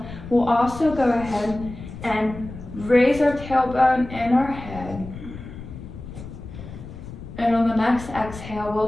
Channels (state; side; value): noise; left; rumble, 13 dB below the sound